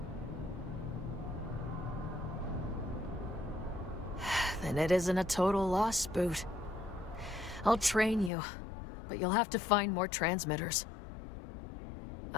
Then it isn't a total loss, Boot. I'll train you, but you'll have to find more transmitters.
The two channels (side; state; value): right; drops out; at 8.3 s